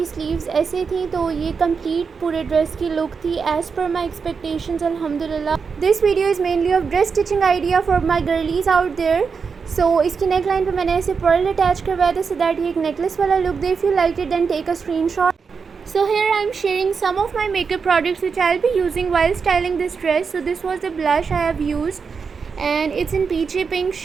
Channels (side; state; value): left; quieter; 5.5 dB